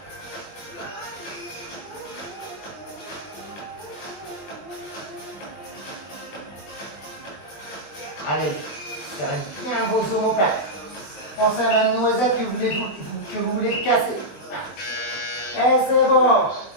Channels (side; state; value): right; late; 20 ms